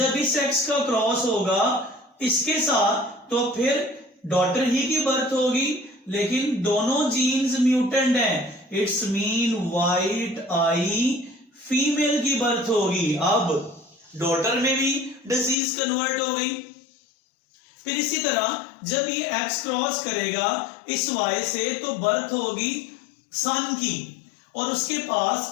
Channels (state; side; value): drops out; right; at 15.6 s